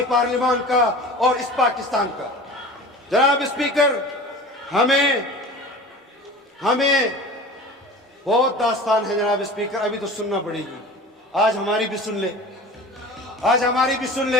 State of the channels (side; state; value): both; normal; correlation 0.38